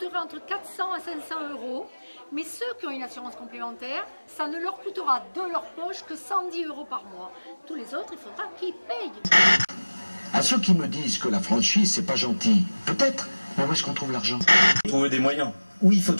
entre 400 à 500 €, mais ceux qui ont une assurance complémentaire, ça ne leur coûtera de leur poche que 110 € par mois. Tous les autres, il faudra qu'ils payent. À ceux qui me disent que la franchise, c'est pas gentil, peut-être, mais où est-ce qu'on trouve l'argent? Trouver des moyens. Oui, il faut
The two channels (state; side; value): inverted; both; correlation -1.00